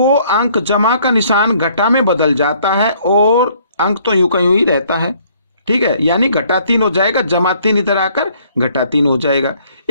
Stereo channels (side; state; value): both; inverted; correlation -0.62